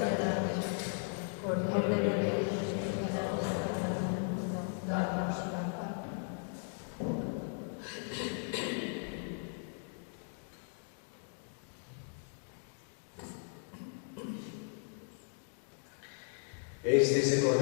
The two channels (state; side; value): silent; right; 53 dB below the other